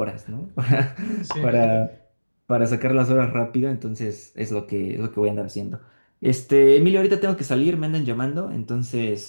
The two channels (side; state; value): both; inverted; correlation -1.00